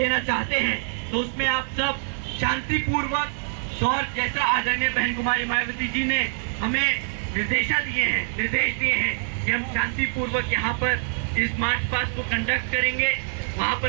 चाहते हैं, तो उसमें आप सब शांतिपूर्वक और जैसा आदरणीय बहन कुमारी मायावती जी ने हमें निर्देश दिए हैं कि हम शांतिपूर्वक यहाँ पर इस मार्च पास्ट को कंडक्ट करेंगे, वहाँ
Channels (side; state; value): left; silent; 62 dB below the other